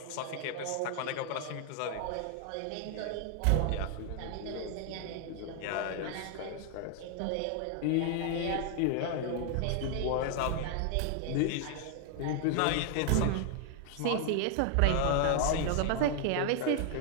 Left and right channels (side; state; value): both; different; correlation 0.00